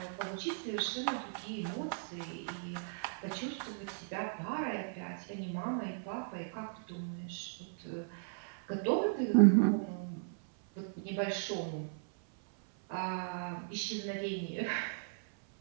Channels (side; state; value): left; silent; 53 dB below the other